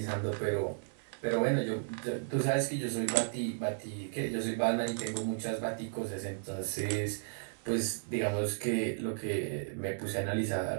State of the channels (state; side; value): silent; left; digital silence